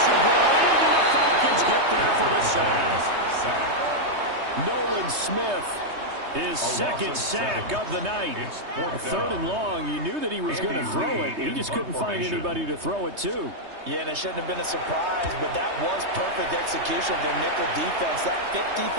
brought in, and the Falcons get there for the sack. Nolan Smith, his 2nd sack of the night. 3rd and long. You knew that he was going to throw it. He just couldn't find anybody to throw it to. Yeah, and it shouldn't have been a surprise, but that was perfect execution of their nickel defense. That 5th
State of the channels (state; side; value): late; left; 3.2 ms